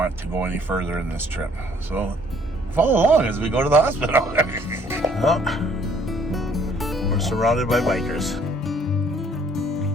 to go any further in this trip. So follow along as we go to the hospital. Well, we're surrounded by bikers.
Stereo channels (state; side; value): normal; both; correlation 0.60